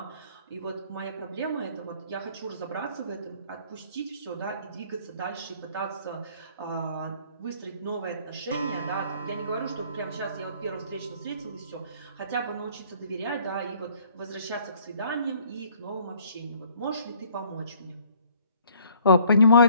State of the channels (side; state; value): both; inverted; correlation -0.58